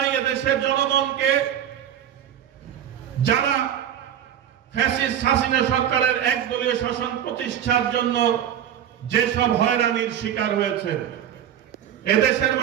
এদেশের জনগণকে, যারা ফ্যাসিস্ট হাসিনা সরকারের একদলীয় শাসন প্রতিষ্ঠার জন্য যেসব হয়রানির শিকার হয়েছে। এদেশের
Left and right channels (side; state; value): left; quieter; 10.0 dB